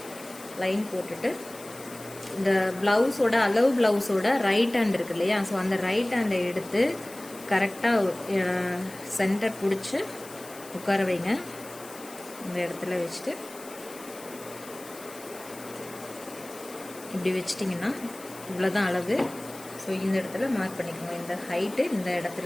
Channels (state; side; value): noise; left; hiss, 17 dB below the sound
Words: லைன் போட்டுட்டு இந்த ப்ளவுஸோட ப்ளவுஸோட ரைட் ஹேண்ட் இருக்கு இல்லையா, ஸோ அந்த ரைட் ஹேண்டை எடுத்து கரெக்டாக சென்டர் பிடிச்சி உட்கார வைங்க. இந்த இடத்துல வச்சுட்டு இப்படி வச்சிட்டிங்கன்னா இவ்வளோதான் அளவு. ஸோ இந்த இடத்துல மார்க் பண்ணிக்கோங்க. இந்த ஹைட்டு இந்த